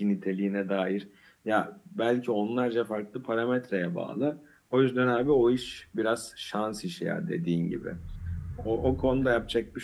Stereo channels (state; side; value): identical; both; correlation 1.00